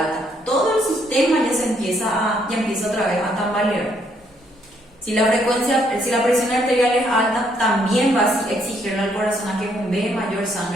todo el sistema ya empieza otra vez a tambalear. Si la presión arterial es alta, también va a exigirle al corazón a que bombee mayor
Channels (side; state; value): both; normal; correlation 0.70